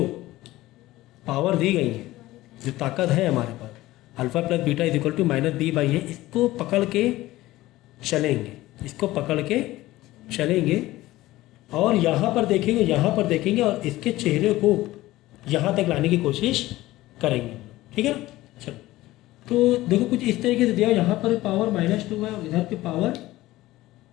पावर दी गई है, जो ताकत है हमारे पास, alpha plus beta is equal to -b/a, इसको पकड़ के चलेंगे, इसको पकड़ के चलेंगे और यहाँ पर देखेंगे और इसके चेहरे को यहाँ तक लाने की कोशिश करेंगे। ठीक है ना? चलो, तो देखो कुछ इस तरीके से दिया, यहाँ पर पावर -2 है और इधर की पावर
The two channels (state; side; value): quieter; right; 17.2 dB